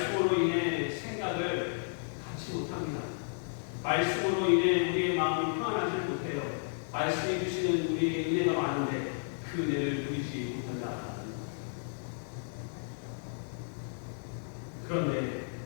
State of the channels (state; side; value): silent; right; digital silence